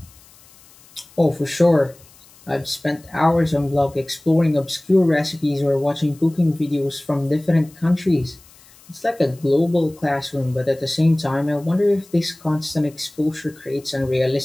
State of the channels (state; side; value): noise; left; hiss, 26 dB below the sound